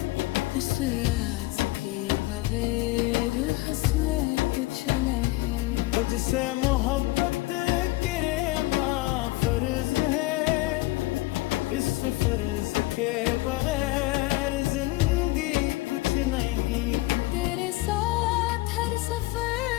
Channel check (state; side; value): quieter; right; 19.9 dB